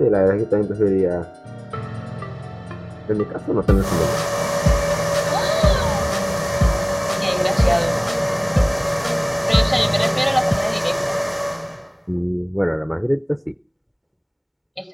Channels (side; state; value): both; identical; correlation 1.00